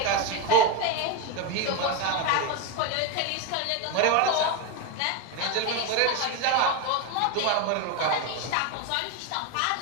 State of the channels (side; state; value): both; different; correlation 0.03